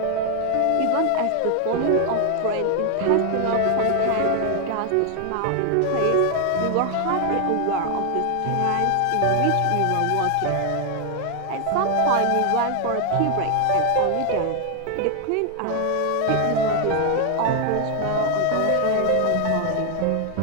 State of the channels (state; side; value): different; both; correlation 0.01